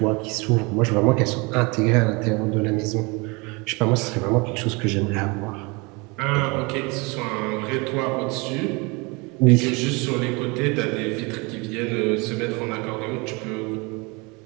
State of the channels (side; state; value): left; quieter; 27.7 dB